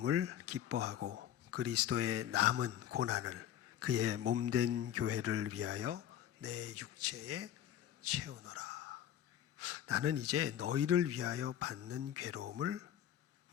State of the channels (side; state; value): right; quieter; 10.9 dB